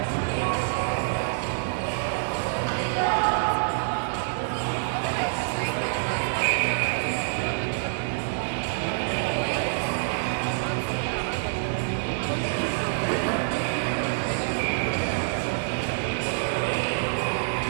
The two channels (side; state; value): left; silent; 61 dB below the other